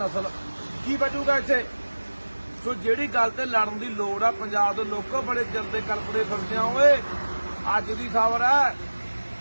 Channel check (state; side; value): inverted; both; correlation -1.00